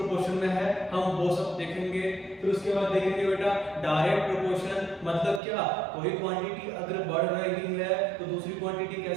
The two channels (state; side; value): drops out; left; at 5.4 s